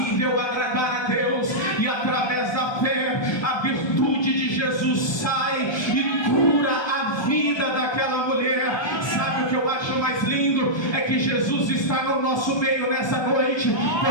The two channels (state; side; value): late; right; 1.2 ms